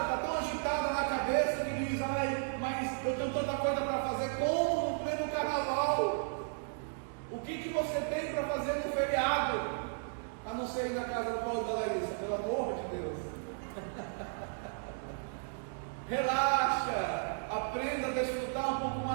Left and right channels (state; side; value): silent; left; digital silence